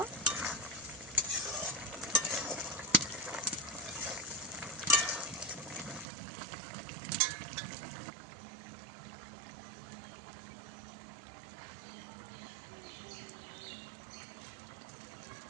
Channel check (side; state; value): left; drops out; at 6.1 s